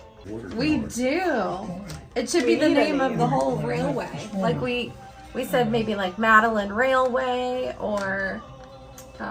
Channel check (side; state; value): both; identical; correlation 1.00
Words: Water We tower. do. It should be the name of the whole railway. Like we said maybe like Madeleine Railway or